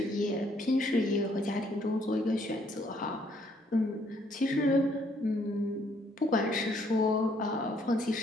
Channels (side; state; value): both; normal; correlation 0.67